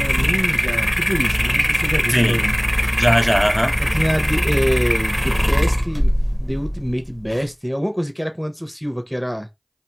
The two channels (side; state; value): both; identical; correlation 1.00